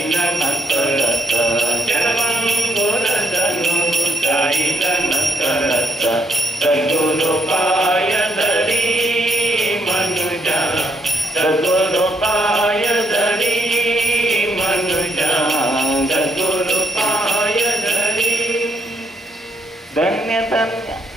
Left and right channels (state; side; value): normal; both; correlation 0.75